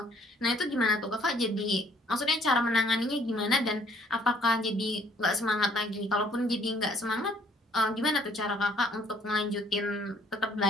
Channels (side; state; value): both; normal; correlation 0.62